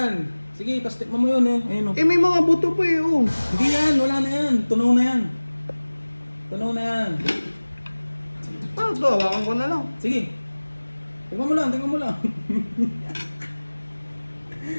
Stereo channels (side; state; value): both; inverted; correlation -1.00